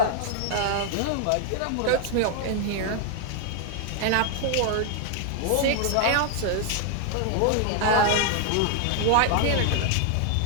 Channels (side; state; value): both; different; correlation 0.00